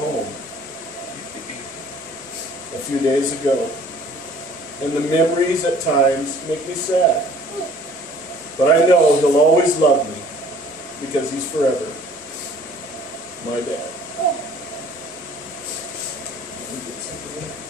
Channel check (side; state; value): both; normal; correlation 0.53